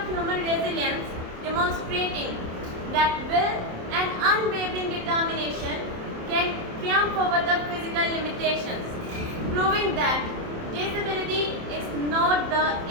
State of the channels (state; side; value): late; left; 27 ms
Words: human resilience, demonstrating that will and unwavering determination can triumph over the physical limitations, proving that disability is not the